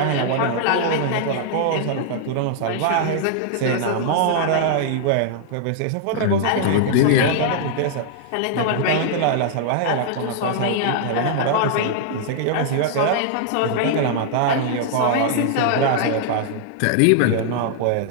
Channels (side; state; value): both; different; correlation -0.01